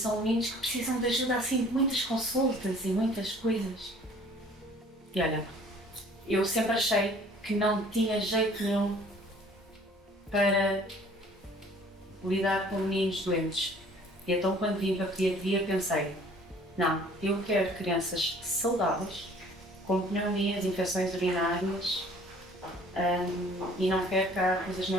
meninos que precisam de ajuda assim de muitas consultas e muitas coisas. E olha, eu sempre achei que não tinha jeito nenhum para lidar com meninos doentes. E então quando vim para a pediatria pensei, não, eu quero crianças saudáveis, com pneumonias, infecções urinárias, e não quero cá coisas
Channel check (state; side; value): normal; both; correlation 0.53